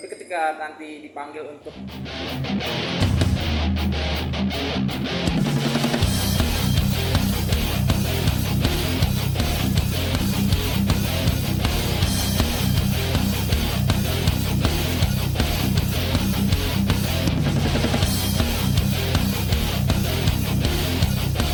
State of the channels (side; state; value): both; identical; correlation 1.00